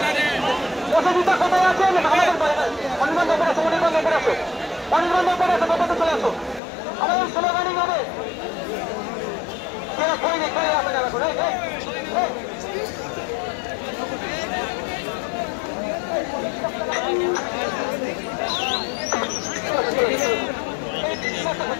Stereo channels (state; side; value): drops out; right; at 6.6 s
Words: পছন্দিতা কোথায় আছেন? আমাদের অনির্বাণ ব্যাপার আছে, অনির্বাণ ব্যাপার আছে, অনির্বাণ ব্যাপার আছে, ব্যাপারে চলে আসো। আমাদের স্লোগানিং হবে কেন কই রে কই আসে যাবে করে